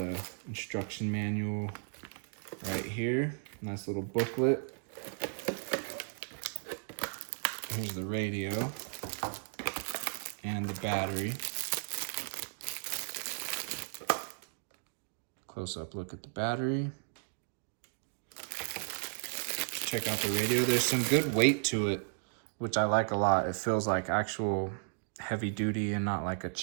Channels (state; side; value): silent; left; digital silence